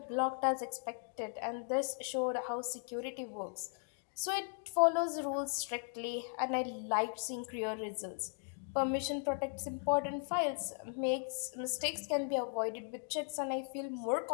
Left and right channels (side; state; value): right; silent; 53 dB below the other